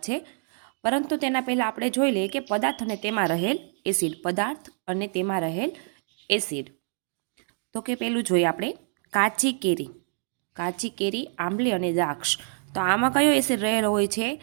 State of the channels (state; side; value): silent; left; digital silence